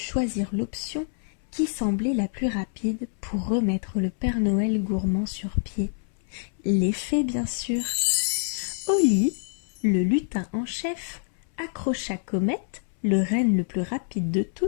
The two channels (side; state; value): right; silent; 61 dB below the other